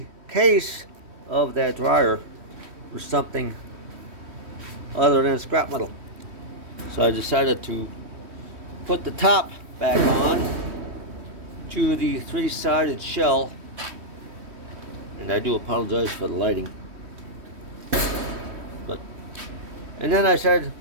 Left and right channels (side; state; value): left; late; 3.1 ms